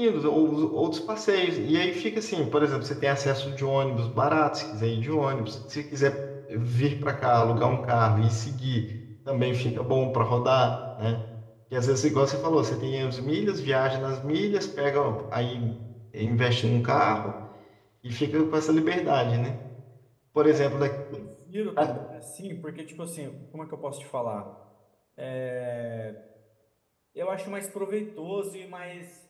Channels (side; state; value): both; identical; correlation 1.00